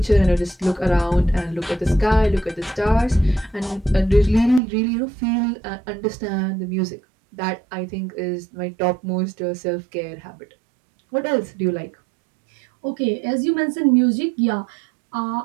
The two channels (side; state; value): left; drops out; at 4.6 s